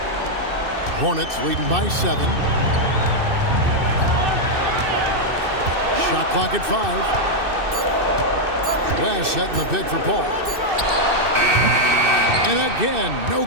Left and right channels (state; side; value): late; left; 2.6 ms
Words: Hornets leading by 7. Shot clock at 5. West setting the pick for Paul. And again, no